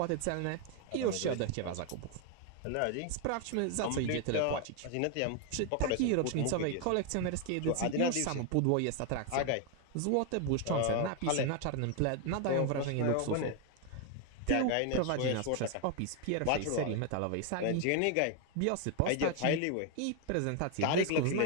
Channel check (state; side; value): different; both; correlation 0.01